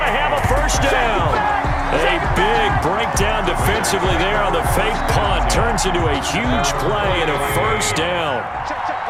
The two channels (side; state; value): both; identical; correlation 1.00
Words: to have a first down. A big breakdown defensively there on the fake punt. Turns into a huge play and a first down.